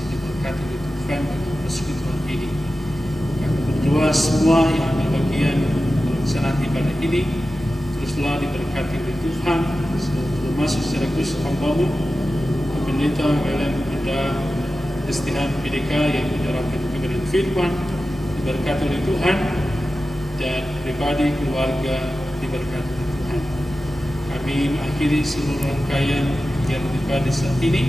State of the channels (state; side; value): normal; both; correlation 0.93